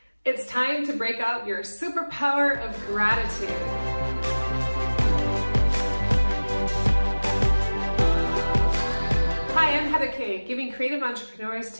It's time to break out your superpower of gratitude. Hi, I'm Kaye, giving creative entrepreneurs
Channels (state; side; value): inverted; both; correlation -1.00